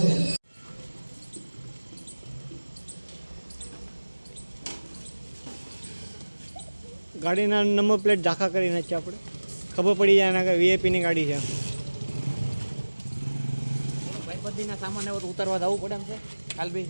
છે. ગાડીના નંબર પ્લેટ ઝાંખા કરી નાખીએ આપણે, ખબર પડી જાય એના કે વીઆઈપીની ગાડી છે. ભાઈબંધીના સામાન એવો તો ઉતારવા જવું પડે એમ છે. કાલ બે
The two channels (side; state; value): both; inverted; correlation -1.00